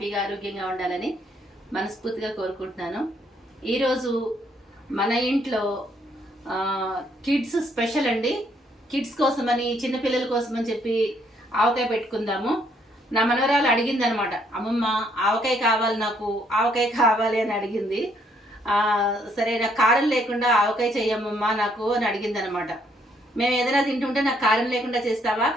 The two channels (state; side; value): normal; both; correlation 0.69